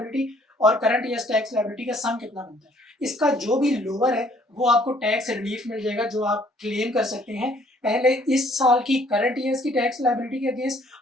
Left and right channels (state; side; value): normal; both; correlation 0.61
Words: और करंट ईयर टैक्स लायबिलिटी का सम कितना बनता है। इसका जो भी लोअर है वो आपको टैक्स रिलीफ मिल जाएगा जो आप क्लेम कर सकते हैं पहले इस साल की करंट ईयर्स की टैक्स लायबिलिटी के अगेंस्ट,